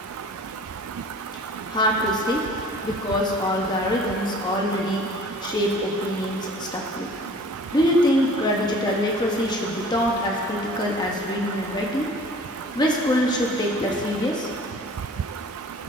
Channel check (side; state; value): both; normal; correlation 0.48